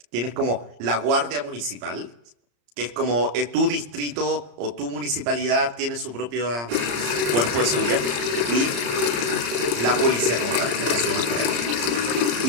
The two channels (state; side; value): late; left; 34 ms